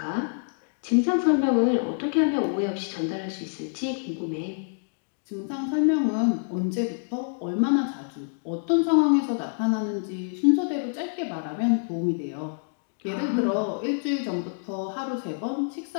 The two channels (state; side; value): silent; right; digital silence